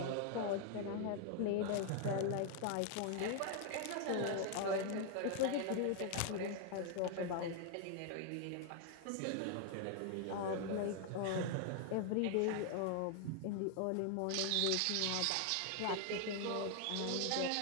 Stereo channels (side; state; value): both; different; correlation 0.00